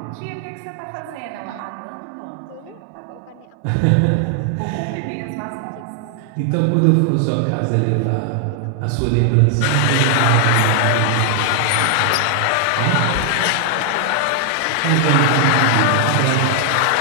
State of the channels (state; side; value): different; both; correlation 0.00